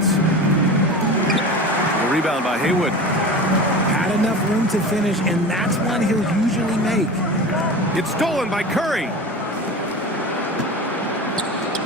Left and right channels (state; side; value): normal; both; correlation 0.31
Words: The rebound by Haywood. Had enough room to finish, and that's one he'll usually make. It's stolen by Curry.